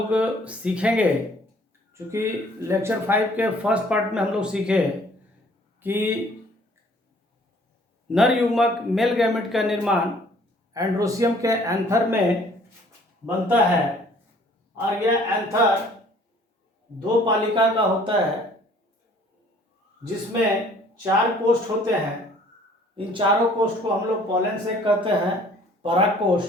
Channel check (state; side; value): normal; both; correlation 0.56